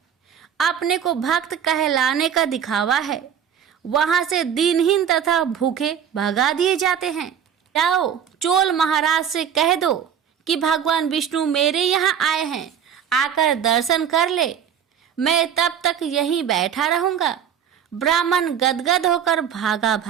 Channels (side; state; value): left; quieter; 8.4 dB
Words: अपने को भक्त कहलाने का दिखावा है। वहां से दीनहीन तथा भूखे भगा दिए जाते हैं। जाओ चोल महाराज से कह दो कि भगवान विष्णु मेरे यहाँ आए हैं, आकर दर्शन कर ले। मैं तब तक यहीं बैठा रहूंगा। ब्राह्मण गदगद होकर भागा